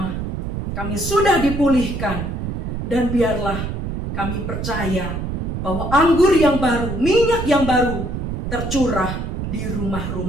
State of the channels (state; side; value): noise; right; rumble, 4 dB below the sound